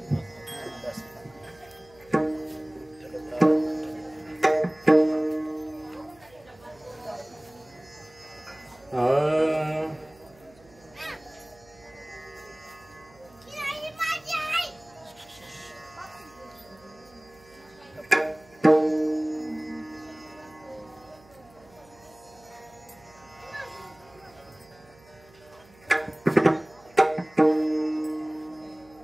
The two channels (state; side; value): noise; right; hum, 26 dB below the sound